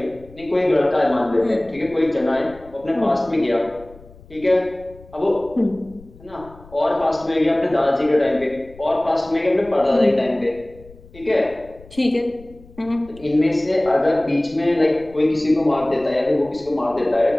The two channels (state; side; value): noise; left; rumble, 23 dB below the sound